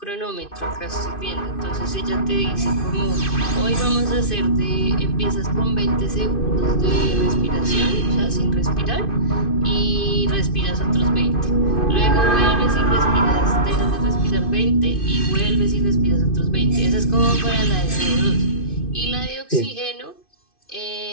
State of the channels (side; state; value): right; late; 2.5 ms